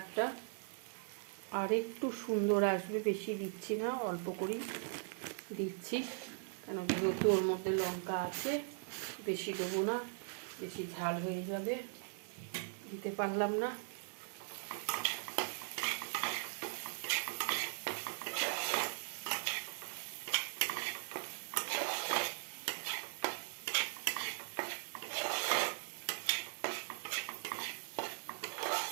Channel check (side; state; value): left; silent; 51 dB below the other